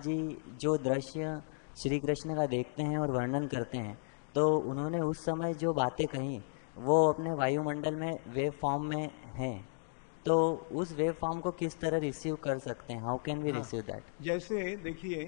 जो दृश्य श्री कृष्ण का देखते हैं और वर्णन करते हैं, तो उन्होंने उस समय जो बातें कही वो अपने वायुमंडल में वेव फॉर्म में हैं, तो उस वेव फॉर्म को किस तरह रिसीव कर सकते हैं? How can we receive that? जैसे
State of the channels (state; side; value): silent; right; digital silence